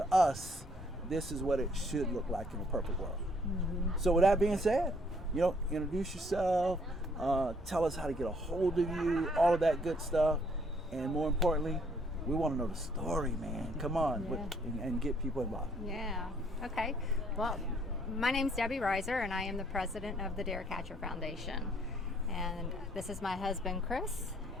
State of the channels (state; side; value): normal; both; correlation 0.65